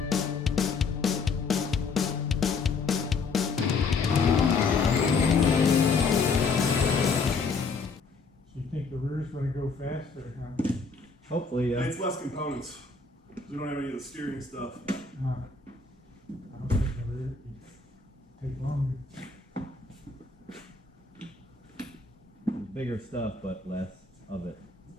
So you think the rear's gonna go faster, huh? Hopefully, yeah. It's less components. We don't have any of the steering stuff. I don't think the rear take longer. Bigger stuff, but less of it.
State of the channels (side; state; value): right; quieter; 4.6 dB